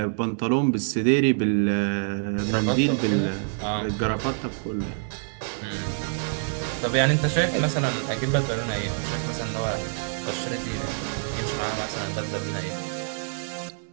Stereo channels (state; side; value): silent; left; 61 dB below the other